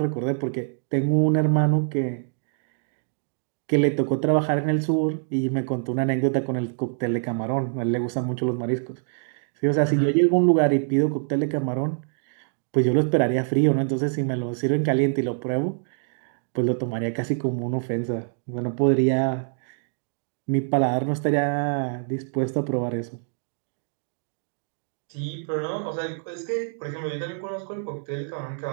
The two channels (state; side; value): silent; left; digital silence